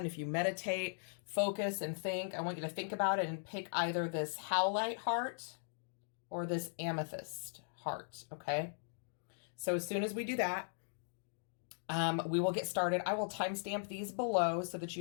If you meditate, focus, and think, I want you to think about it and pick either this Howlite heart or this Amethyst heart, okay? So as soon as we do that, we will get started. I will timestamp these below so that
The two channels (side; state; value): right; silent; digital silence